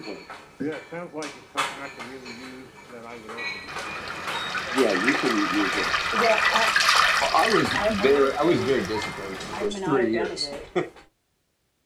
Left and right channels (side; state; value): both; identical; correlation 1.00